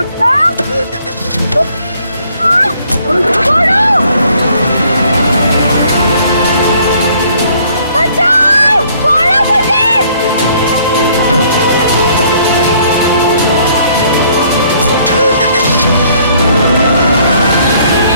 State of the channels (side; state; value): both; inverted; correlation -0.62